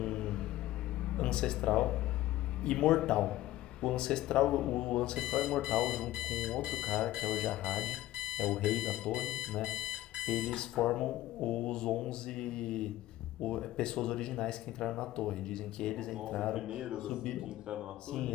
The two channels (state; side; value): quieter; right; 15.2 dB